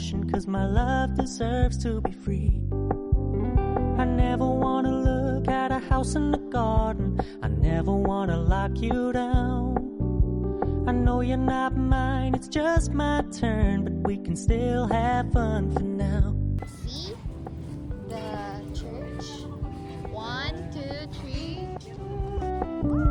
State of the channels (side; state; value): both; identical; correlation 1.00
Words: 'cause my love deserves to be free. I never wanna look at a house in the garden. I never wanna lock you down. I know you're not mine, it's just my turn, but we can still have fun for now. See the church. 1, 2, 3.